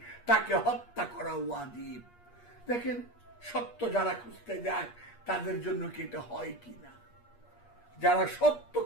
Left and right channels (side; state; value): right; late; 8.4 ms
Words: তাকে হত্যা করা ওয়াজিব। দেখেন সত্য যারা খুঁজতে যায় তাদের জন্য কি এটা হয় কিনা? যারা সত্য